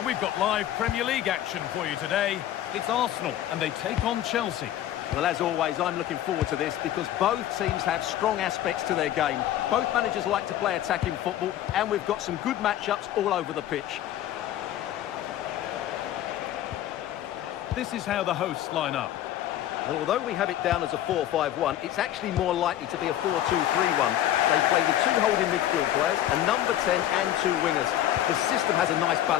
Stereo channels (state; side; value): quieter; right; 12.3 dB